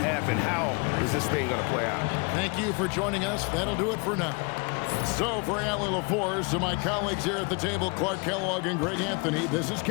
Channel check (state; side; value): quieter; right; 32.2 dB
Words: How is this thing gonna play out? Thank you for joining us. That'll do it for now. So for Allie LaForce, to my colleagues here at the table, Clark Kellogg and Greg Anthony, this is